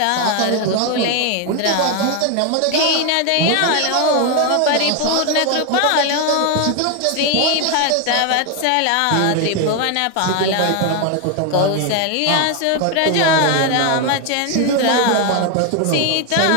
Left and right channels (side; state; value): both; different; correlation 0.01